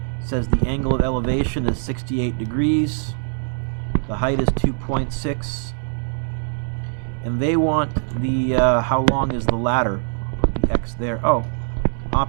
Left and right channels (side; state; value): left; silent; 60 dB below the other